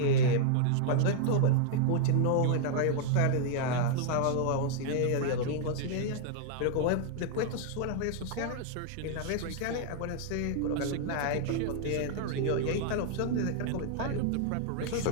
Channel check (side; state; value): both; different; correlation 0.00